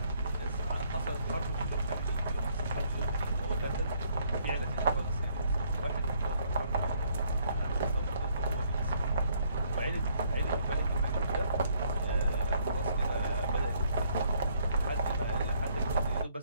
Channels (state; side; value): inverted; both; correlation -0.67